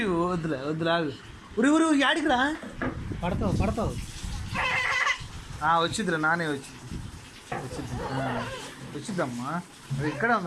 వద్దులే వద్దులే ఆగు ఉరి ఉరి యాడికి రా పడతావు పడతావు వచ్చిద్దిరా నానే వచ్చిద్దమ్మా అది ఇక్కడే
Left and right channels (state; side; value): identical; both; correlation 1.00